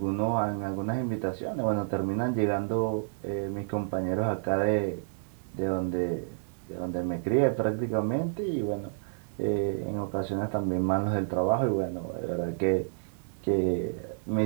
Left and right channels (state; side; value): silent; left; digital silence